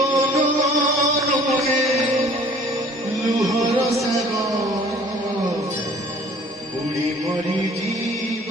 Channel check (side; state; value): both; normal; correlation 0.52